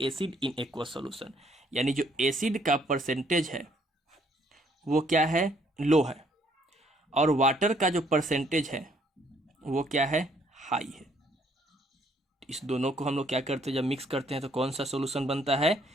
acid in aqueous solution, यानी जो एसिड का परसेंटेज है वो क्या है, लो है, और वाटर का जो परसेंटेज है वो क्या है, हाई है। इस दोनों को हम लोग क्या करते हैं, जब मिक्स करते हैं तो कौन सा सॉल्यूशन बनता है,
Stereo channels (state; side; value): normal; both; correlation 0.66